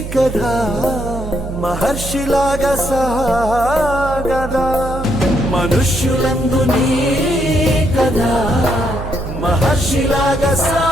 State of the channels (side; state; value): right; noise; hum, 8 dB below the sound